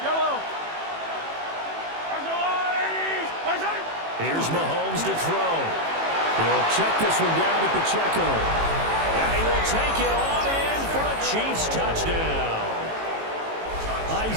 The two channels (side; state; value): left; late; 18 ms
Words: Here's Mahomes to throw. He'll check this one down to Pacheco. And he will take it on in for a Chiefs touchdown.